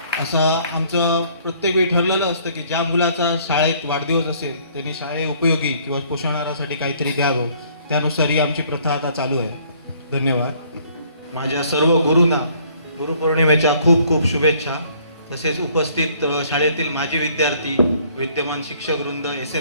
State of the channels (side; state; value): both; inverted; correlation -0.61